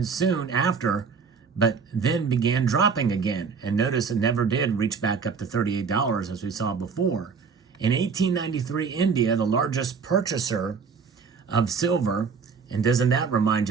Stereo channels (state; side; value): quieter; left; 5.6 dB